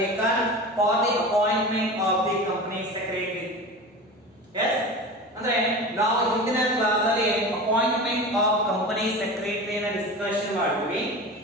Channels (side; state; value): both; normal; correlation 0.31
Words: for the appointment of the company secretary. Yes, ಅಂದ್ರೆ ನಾವು ಹಿಂದಿನ class ಅಲ್ಲಿ appointment of company ಸೆಕ್ರೆಟರಿನ discussion ಮಾಡಿದ್ವಿ.